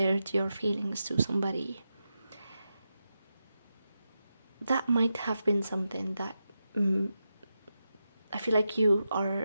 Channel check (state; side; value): inverted; both; correlation -0.89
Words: your feelings to somebody. That might have been something that I feel like